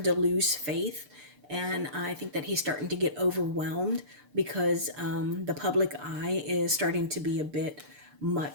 to lose faith. And I think that he's starting to get overwhelmed because the public eye is starting to be a bit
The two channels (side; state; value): left; late; 6.8 ms